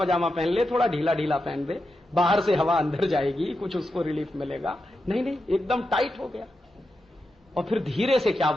पहन ले, थोड़ा ढीला ढीला पहन दे, बाहर से हवा अंदर जाएगी, कुछ उसको रिलीफ मिलेगा। नहीं नहीं एकदम टाइट हो गया। और फिर धीरे से क्या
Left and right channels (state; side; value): normal; both; correlation 0.88